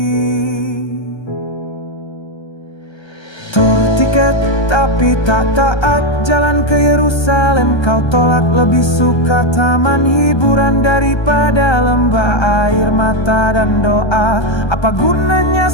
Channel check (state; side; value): late; right; 1.3 ms